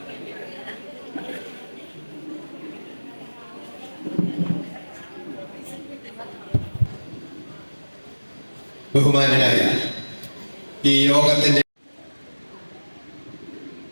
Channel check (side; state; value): both; inverted; correlation -1.00